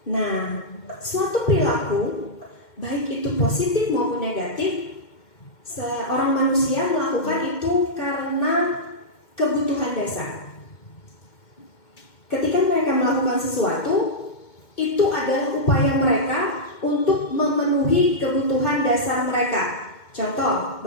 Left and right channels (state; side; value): late; right; 2.1 ms